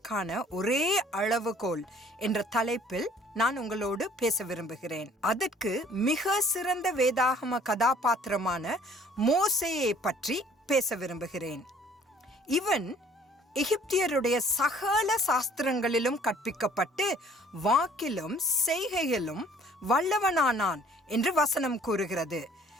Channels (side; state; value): both; normal; correlation 0.56